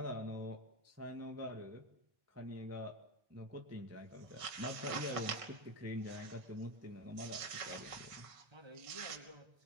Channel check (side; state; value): left; late; 1.5 ms